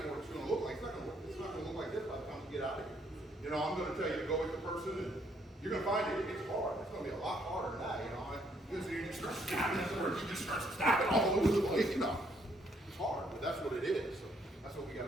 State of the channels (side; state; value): both; normal; correlation 0.70